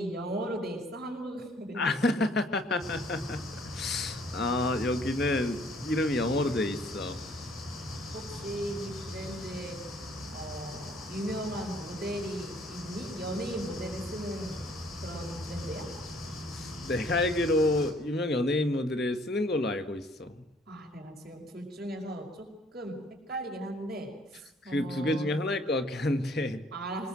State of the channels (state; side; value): normal; both; correlation 0.61